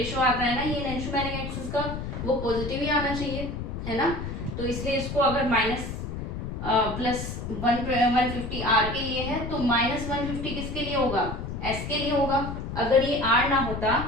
आता है ना ये एनेंटियोमेरिक एक्सिस का, वो पॉजिटिव ही आना चाहिए, है ना। तो इसलिए इसको अगर माइनस प्लस 150 आर के लिए है तो माइनस 150 किसके लिए होगा, एस के लिए होगा। अगर ये आर ना होता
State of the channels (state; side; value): noise; left; rumble, 6 dB below the sound